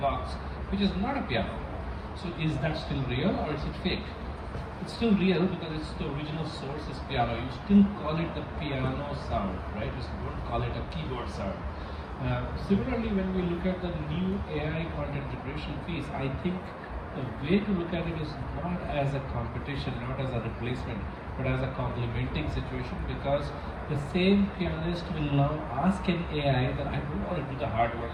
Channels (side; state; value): both; identical; correlation 1.00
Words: which is not a piano. So is that still real or is it fake? It's still real because it's the original source is piano. You still call it the piano sound, right? You don't call it a keyboard sound. Similarly, when we look at the new AI content generation piece, I think the way to look at it is not as a competition, not as a replacement, but as a complementing situation, because the same pianist will now ask an AI that I don't want to do the hard work